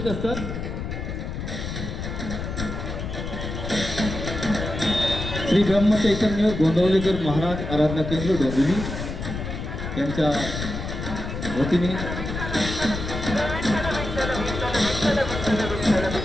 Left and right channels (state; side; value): noise; left; rumble, 6 dB below the sound